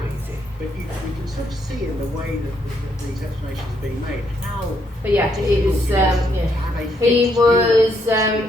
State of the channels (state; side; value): normal; both; correlation 0.74